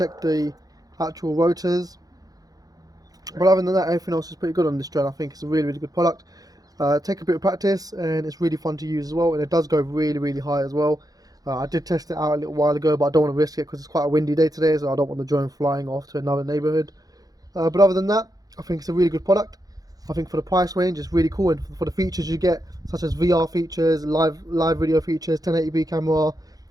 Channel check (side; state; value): left; late; 0.18 ms